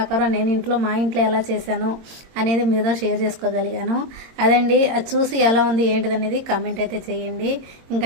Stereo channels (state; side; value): late; left; 22 ms